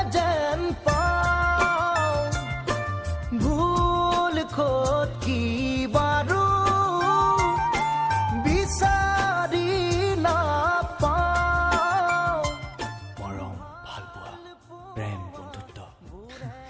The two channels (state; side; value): identical; both; correlation 1.00